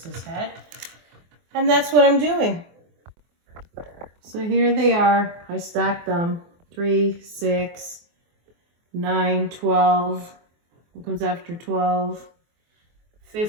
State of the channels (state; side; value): late; left; 24 ms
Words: his head. And that's what I'm doing. So here they are. I stacked them. 3, 6, 9, 12. What comes after 12?